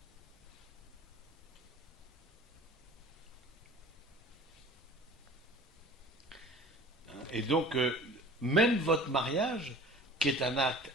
Et donc, même votre mariage, qui est un acte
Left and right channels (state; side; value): normal; both; correlation 0.43